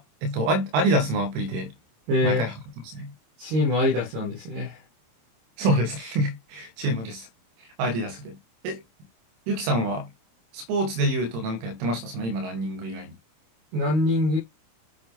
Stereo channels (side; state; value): left; late; 26 ms